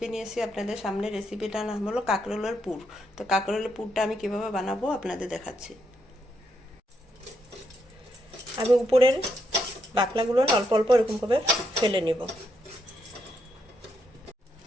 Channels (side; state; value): both; normal; correlation 0.78